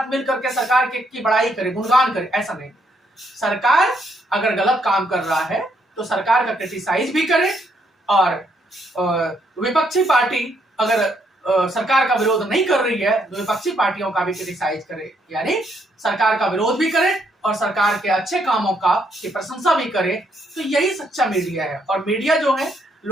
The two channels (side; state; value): both; normal; correlation 0.73